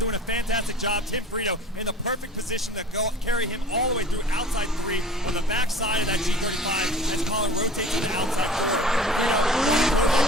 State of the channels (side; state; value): both; normal; correlation 0.43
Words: a fantastic job. Tim Frito in the perfect position to carry him all the way through outside 3 on the back side of that G35 as Colin rotates to the outside